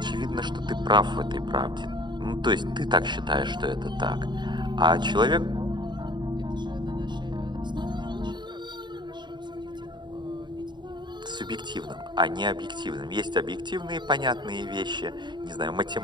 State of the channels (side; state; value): left; late; 0.22 ms